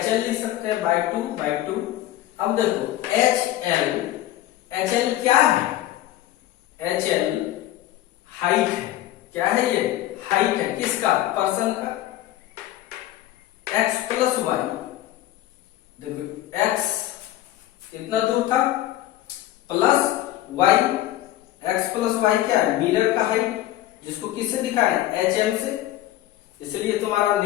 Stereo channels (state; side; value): quieter; right; 14.3 dB